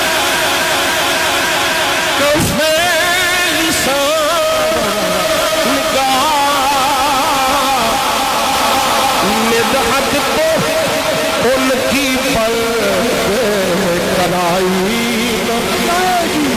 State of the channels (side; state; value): both; identical; correlation 1.00